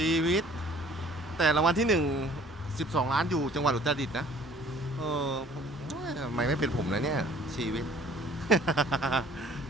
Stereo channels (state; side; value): normal; both; correlation 0.54